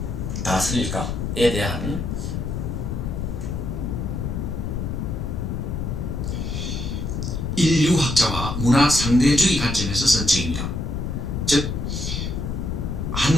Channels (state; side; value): noise; left; rumble, 3 dB below the sound